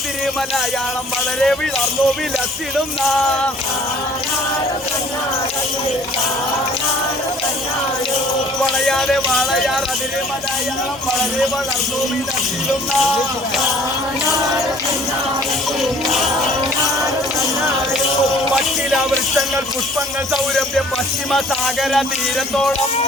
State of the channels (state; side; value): normal; both; correlation 0.53